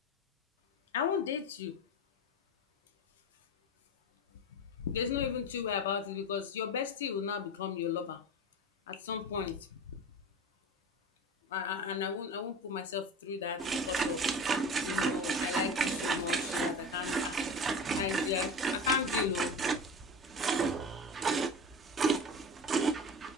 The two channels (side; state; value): both; normal; correlation 0.30